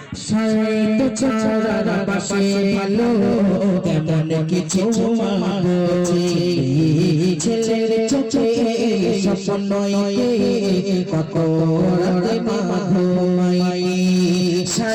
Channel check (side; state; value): both; identical; correlation 1.00